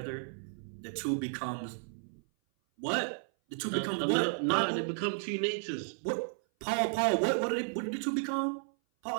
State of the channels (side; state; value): left; silent; 56 dB below the other